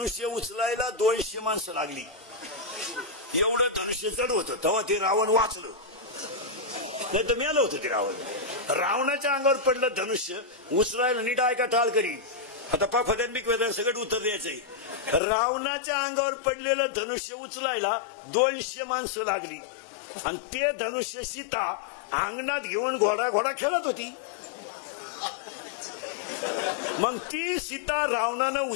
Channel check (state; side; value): drops out; right; at 15.2 s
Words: उचलायला 200 माणसं लागली. एवढं धनुष्य जड होतं. तेव्हा ते रावण वाचलं, नाही तर मेलं होतं ते रावण. रावणाच्या अंगावर पडलं धनुष्य उचलायला, नीट ऐका टाळकरी, आता पाफद्यांबिक वेदन सगळं उत्तर द्यायचंय. रावणाच्या अंगावर पडलेलं धनुष्य उचलायला 200 माणसं लागली आणि ते धनुष्य सीता अंगणात घेऊन घोडा खेळत होती. मग ती सीता रावणानं